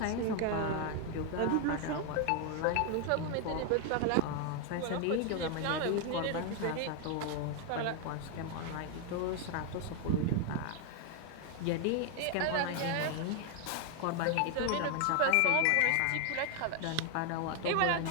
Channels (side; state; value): both; different; correlation 0.01